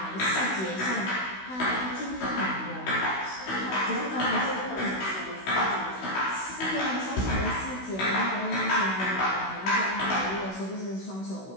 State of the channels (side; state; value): right; late; 16 ms